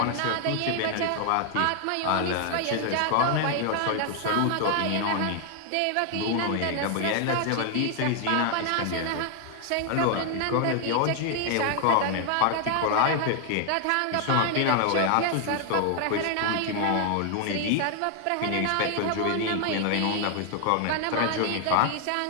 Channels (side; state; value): both; different; correlation 0.00